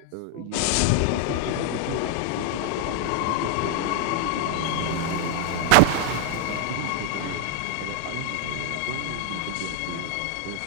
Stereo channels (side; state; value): both; different; correlation 0.00